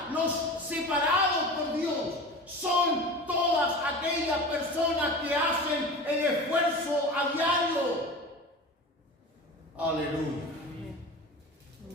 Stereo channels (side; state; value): both; normal; correlation 0.33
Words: los separados por Dios, son todas aquellas personas que hacen el esfuerzo a diario. Aleluya.